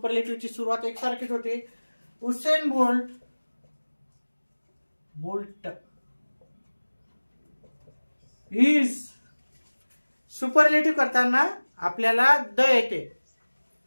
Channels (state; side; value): inverted; both; correlation -1.00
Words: सुरुवात एकसारखीच होते. Usain Bolt is. सुपरलेटिव्ह करताना आपल्याला द येते.